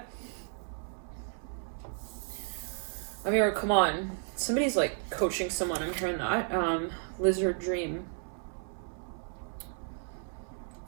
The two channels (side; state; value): left; silent; 56 dB below the other